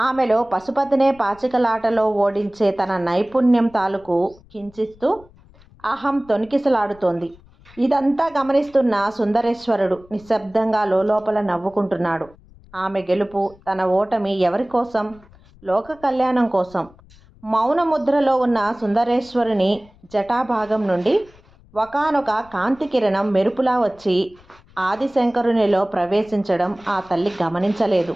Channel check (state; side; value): noise; left; rumble, 26 dB below the sound